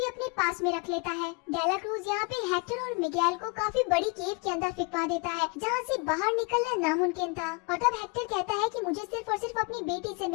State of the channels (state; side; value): quieter; right; 31.0 dB